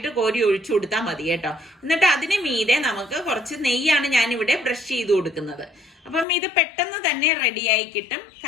കോരി ഒഴിച്ചു കൊടുത്താൽ മതി കേട്ടോ. എന്നിട്ട് അതിന് മീതെ നമുക്ക് കുറച്ച് നെയ്യാണ് ഞാനിവിടെ ബ്രഷ് ചെയ്ത് കൊടുക്കുന്നത്. അപ്പം ഇത് പെട്ടെന്ന് തന്നെ റെഡിയായി കിട്ടും.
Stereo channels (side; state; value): right; drops out; at 6.2 s